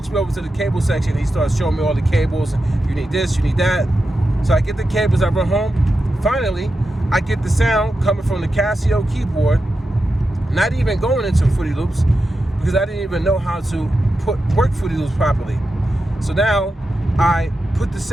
me over to the cable section and he starts showing me all the cables. You need this, you need that. So I get the cables, I run home. Finally, I get the sound coming from the Casio keyboard, not even going into Fruity Loops, because I didn't even know how to work Fruity Loops properly. So now I put the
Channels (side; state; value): both; normal; correlation 0.90